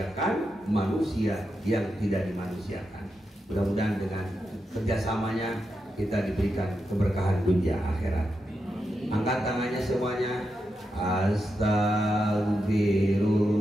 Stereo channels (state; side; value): normal; both; correlation 0.87